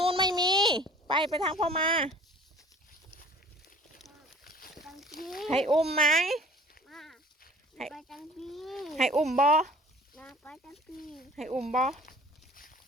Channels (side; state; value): both; normal; correlation 0.48